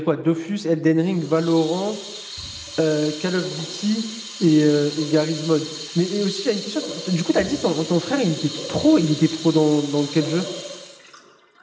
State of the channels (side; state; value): both; identical; correlation 1.00